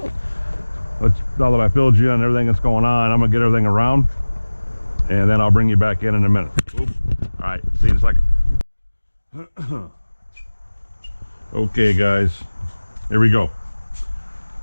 now that I filled you on everything that's going on, I'm gonna get everything around, and then I'll bring you back in a minute. Oop. All right, see you in a second. Okay, guys, here we go.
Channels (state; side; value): inverted; both; correlation -1.00